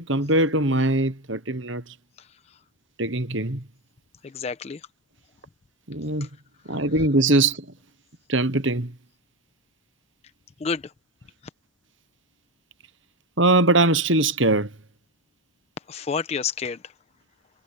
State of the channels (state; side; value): normal; both; correlation 0.15